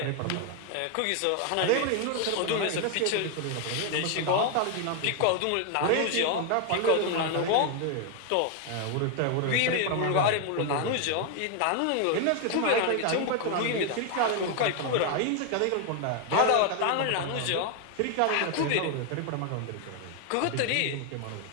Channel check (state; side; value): different; both; correlation 0.00